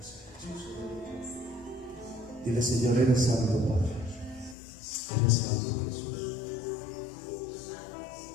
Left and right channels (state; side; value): drops out; right; at 4.5 s